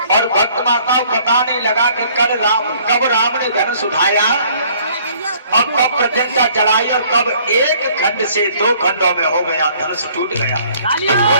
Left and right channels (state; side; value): inverted; both; correlation -0.59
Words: और भक्त माता बताने लगा कि कब राम ने धनुष उठाया और कब प्रत्यंता चढ़ाई और कब एक खंड से दो खंडों में हो गया, धनुष टूट गया।